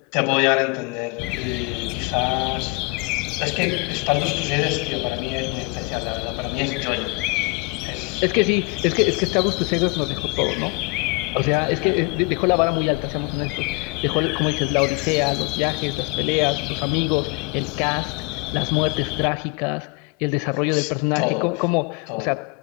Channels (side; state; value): right; quieter; 26.4 dB